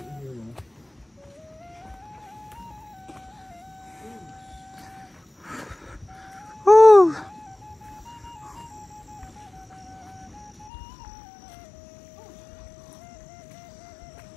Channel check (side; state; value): right; drops out; at 10.7 s